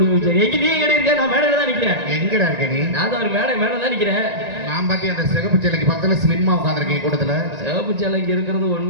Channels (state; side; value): late; left; 1.9 ms